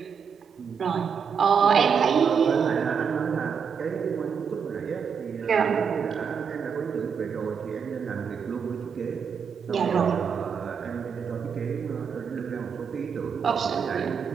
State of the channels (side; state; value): left; quieter; 6.6 dB